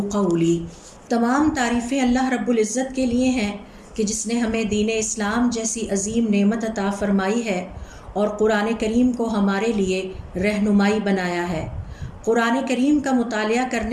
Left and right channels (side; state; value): both; identical; correlation 1.00